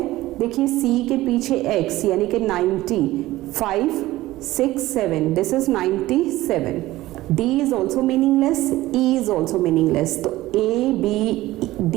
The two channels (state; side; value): quieter; left; 17.0 dB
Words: देखिए C के पीछे X यानी कि 90, 5, 6, 7, this is 97, D is also meaningless, E is also meaningless, तो A, B, D